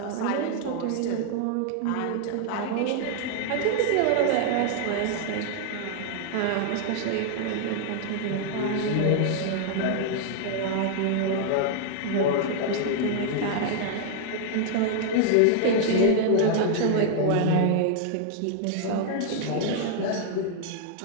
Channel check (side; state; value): both; different; correlation 0.00